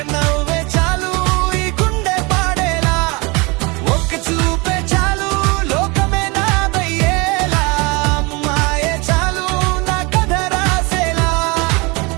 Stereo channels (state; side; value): quieter; left; 27.0 dB